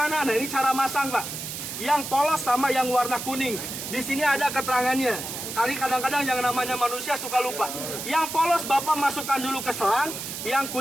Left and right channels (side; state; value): right; noise; hiss, 7 dB below the sound